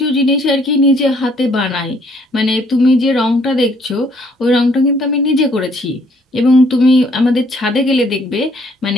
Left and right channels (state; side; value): normal; both; correlation 0.64